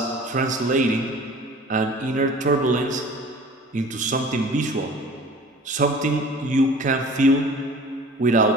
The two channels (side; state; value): both; normal; correlation 0.44